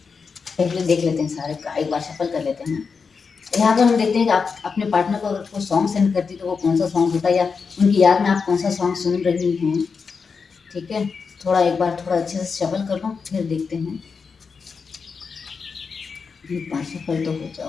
पहले देख लेते हैं सारे का, एक बार शफल कर लेते हैं। यहाँ पर हम देखते हैं कि आप अपने पार्टनर को अगर कोई सॉन्ग सेंड करती तो वो कौन सा सॉन्ग होता है, या उनकी याद में आप कौन सा सॉन्ग सुन रही हैं। ठीक है, थोड़ा एक बार थोड़ा अच्छे से शफल कर लो, फिर देखते हैं। पाँच शफल तो हो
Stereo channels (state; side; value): quieter; right; 5.3 dB